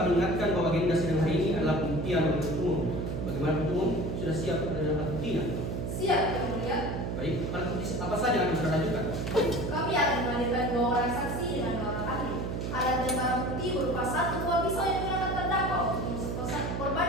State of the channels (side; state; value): right; noise; hum, 3 dB below the sound